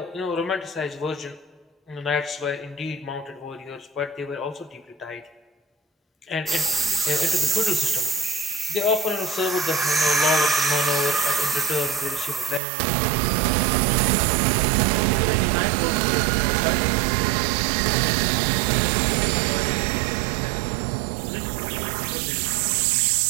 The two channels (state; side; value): drops out; left; at 12.6 s